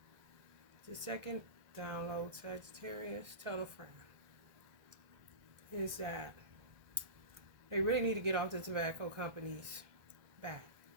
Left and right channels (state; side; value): late; left; 1.4 ms